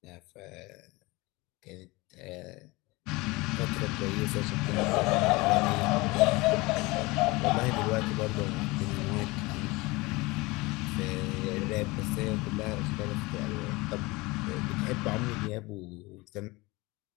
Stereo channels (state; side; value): quieter; right; 23.1 dB